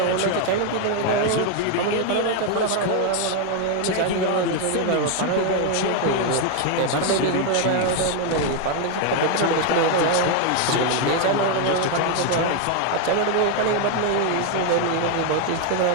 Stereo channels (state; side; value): different; both; correlation 0.01